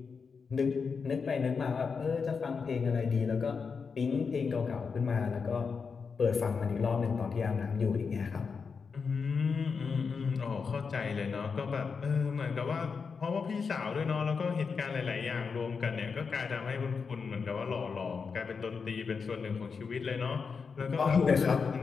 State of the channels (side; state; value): right; quieter; 5.4 dB